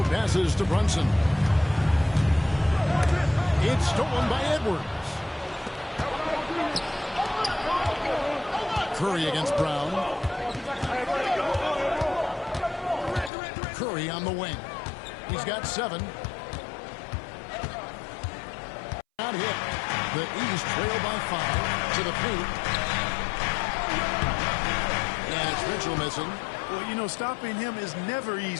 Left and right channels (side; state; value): right; drops out; at 13.3 s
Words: passes to Brunson. It's stolen by Edwards. Curry against Brown. Curry on the wing. He's got 7. Not hit. The East trail by 5 to the paint. And it's Mitchell missing. Well, you know, stopping him is never